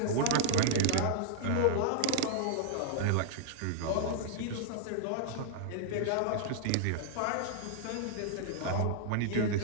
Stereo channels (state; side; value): different; both; correlation -0.01